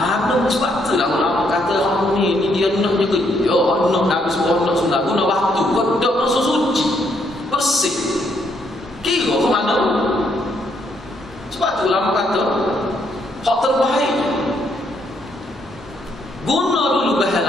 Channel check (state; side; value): normal; both; correlation 0.73